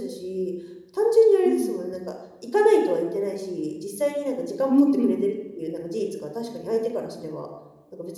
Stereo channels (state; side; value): identical; both; correlation 1.00